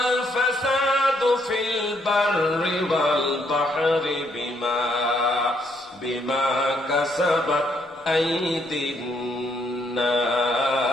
ফাসাদু ফিল বাররি ওয়াল বাহরি বিমা কাসাবাত আইদিন নাস।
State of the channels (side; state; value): both; normal; correlation 0.72